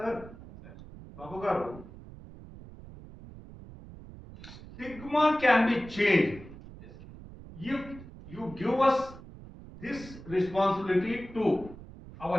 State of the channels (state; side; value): noise; right; rumble, 16 dB below the sound